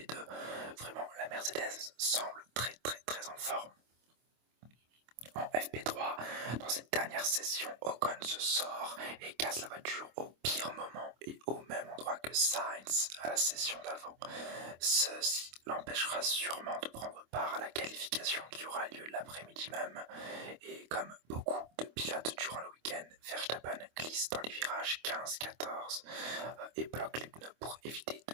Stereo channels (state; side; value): late; left; 25 ms